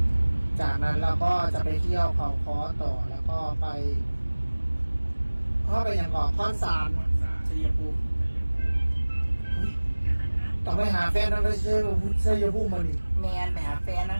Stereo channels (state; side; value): inverted; both; correlation -1.00